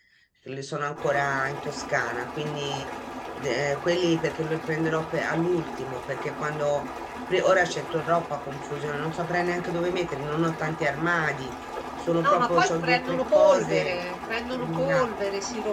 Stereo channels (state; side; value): identical; both; correlation 1.00